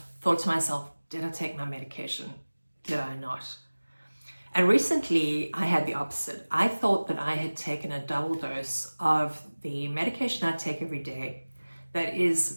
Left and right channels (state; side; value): inverted; both; correlation -1.00